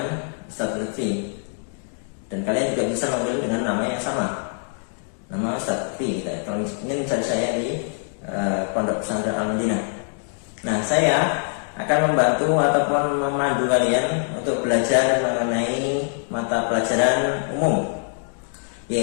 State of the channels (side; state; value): right; silent; 61 dB below the other